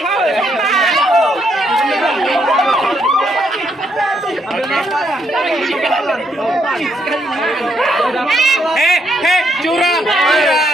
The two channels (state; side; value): normal; both; correlation 0.75